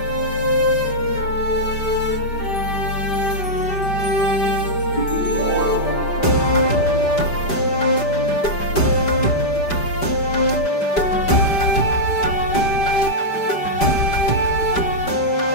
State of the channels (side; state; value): right; late; 5.0 ms